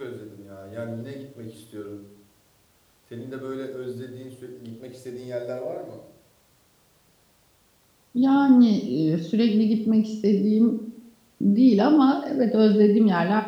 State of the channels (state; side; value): identical; both; correlation 1.00